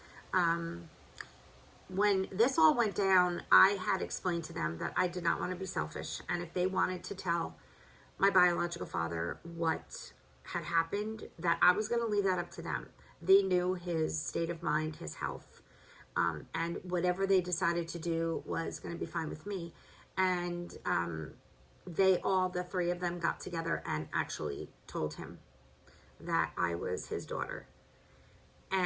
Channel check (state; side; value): identical; both; correlation 1.00